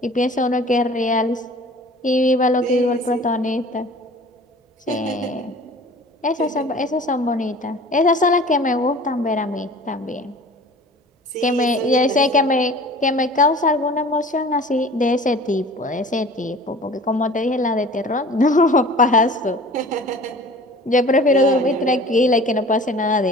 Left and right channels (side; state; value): both; normal; correlation 0.44